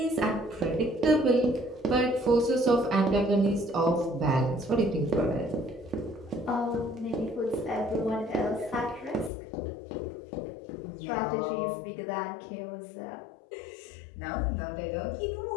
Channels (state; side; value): drops out; right; at 9.3 s